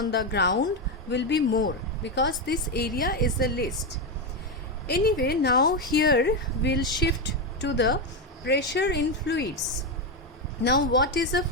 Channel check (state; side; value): normal; both; correlation 0.09